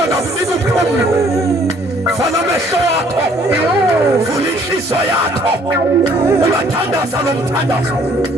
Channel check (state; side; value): normal; both; correlation 0.60